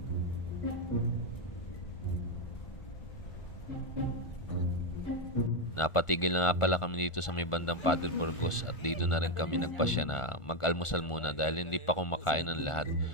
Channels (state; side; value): late; right; 1.4 ms